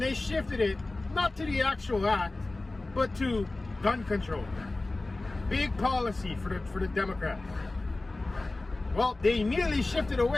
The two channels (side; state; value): right; quieter; 3.1 dB